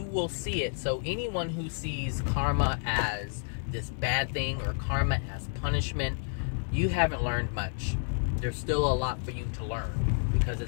will see it. So anyone who sees karma as this bad thing or karma as punishment, you haven't learned much. There's still a lot for you to learn because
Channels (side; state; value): right; silent; digital silence